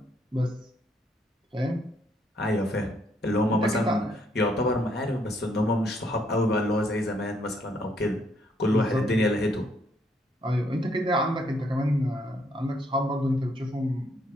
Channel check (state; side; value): normal; both; correlation 0.70